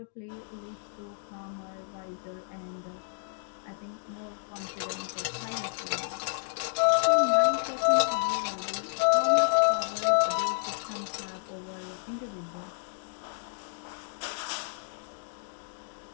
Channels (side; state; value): right; silent; digital silence